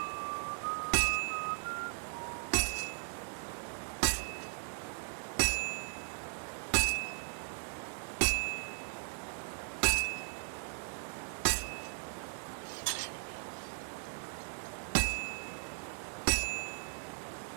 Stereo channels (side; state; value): left; silent; digital silence